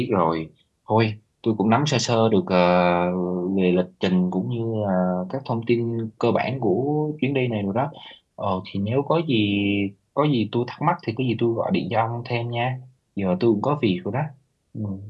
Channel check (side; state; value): both; identical; correlation 1.00